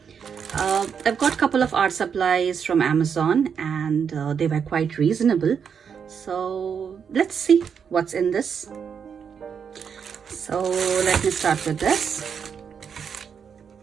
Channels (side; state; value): left; quieter; 7.0 dB